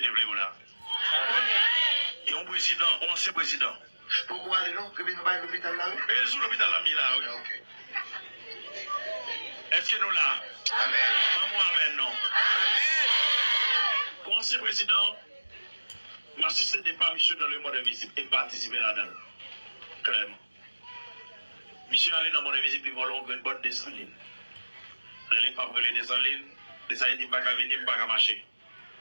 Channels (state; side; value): inverted; both; correlation -1.00